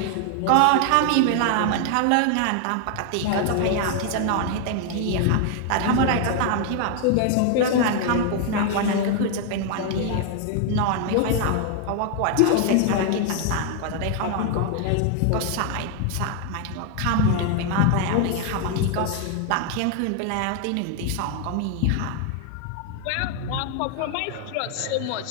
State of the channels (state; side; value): different; both; correlation 0.00